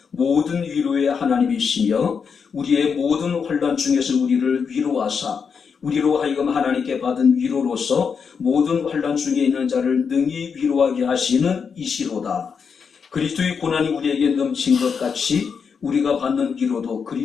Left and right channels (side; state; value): right; quieter; 6.2 dB